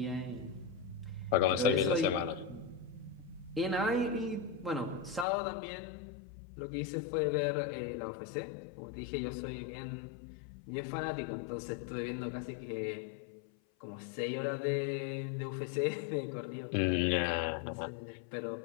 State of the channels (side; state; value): right; drops out; at 5.2 s